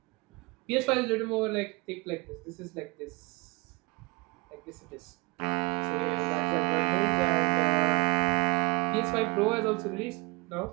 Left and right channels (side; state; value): left; quieter; 25.4 dB